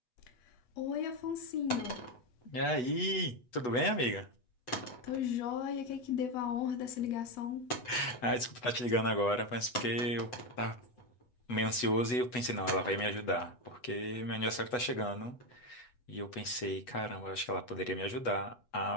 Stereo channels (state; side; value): late; right; 8.1 ms